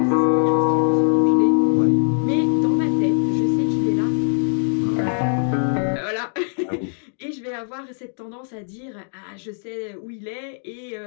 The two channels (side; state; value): right; silent; digital silence